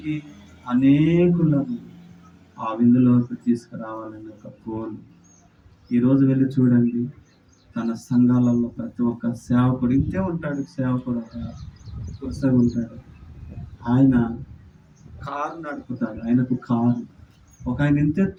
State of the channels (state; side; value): identical; both; correlation 1.00